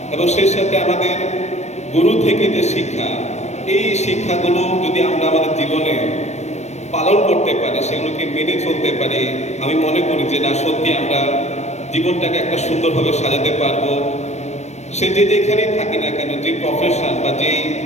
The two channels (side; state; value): right; late; 0.32 ms